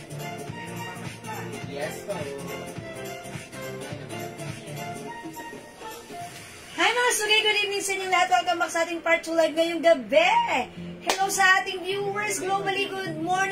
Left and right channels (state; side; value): identical; both; correlation 1.00